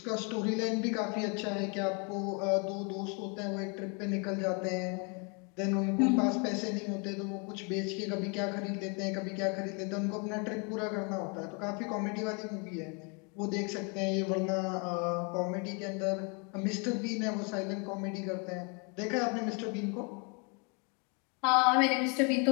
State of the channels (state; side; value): quieter; right; 34.6 dB